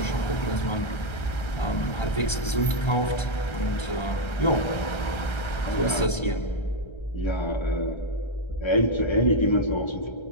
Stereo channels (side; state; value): right; late; 1.3 ms